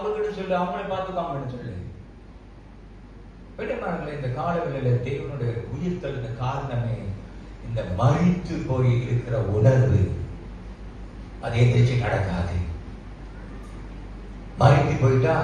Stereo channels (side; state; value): both; identical; correlation 1.00